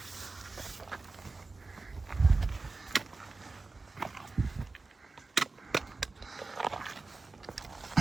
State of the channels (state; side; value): quieter; left; 3.6 dB